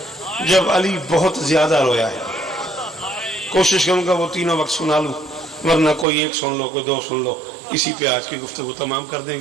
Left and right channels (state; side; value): drops out; left; at 6.1 s